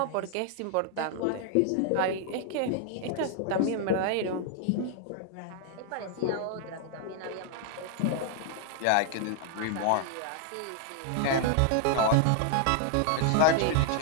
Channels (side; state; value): both; different; correlation 0.00